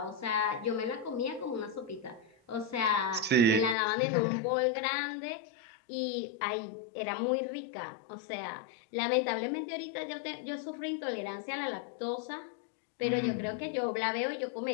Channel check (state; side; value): drops out; right; at 3.8 s